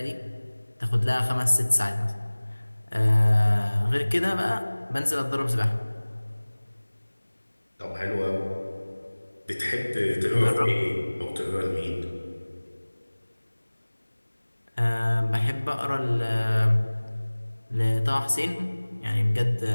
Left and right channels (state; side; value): inverted; both; correlation -1.00